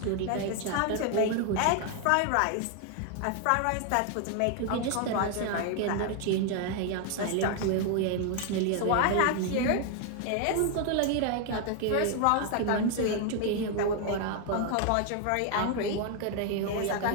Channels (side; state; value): both; different; correlation 0.00